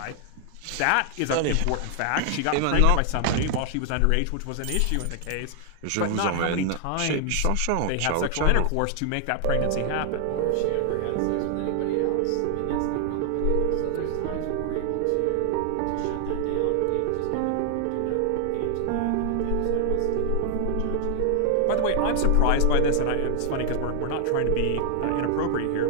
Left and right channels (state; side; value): different; both; correlation 0.00